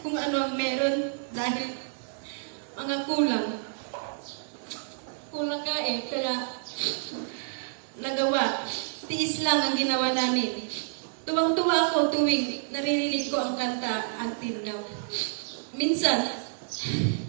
kung ano ang meron dahil mga kulang. Kulang ka kaya nagawa. Tiis lang ang ginawa namin. Tuwang-tuwa ako tuwing naririnig ko ang kanta Until Now. Minsan,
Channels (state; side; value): silent; left; digital silence